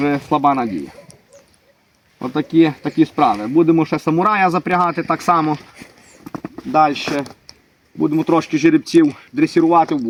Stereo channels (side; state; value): both; identical; correlation 1.00